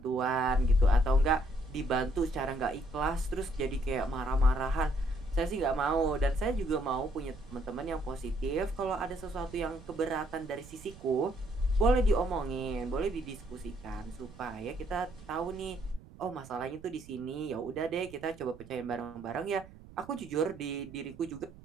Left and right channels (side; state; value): right; noise; rumble, 19 dB below the sound